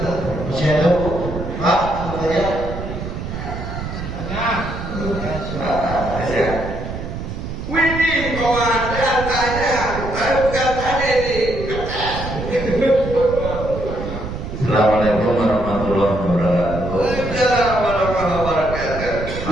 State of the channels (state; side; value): noise; right; rumble, 7 dB below the sound